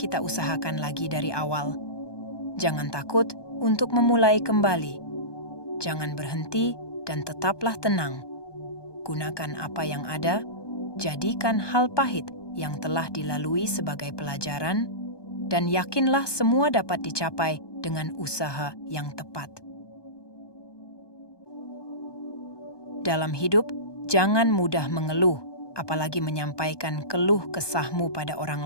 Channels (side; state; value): right; late; 1.2 ms